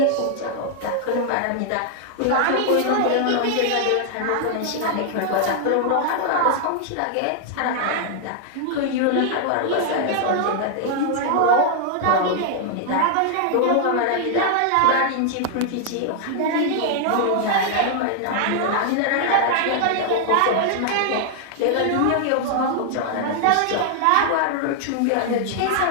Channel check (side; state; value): both; different; correlation 0.00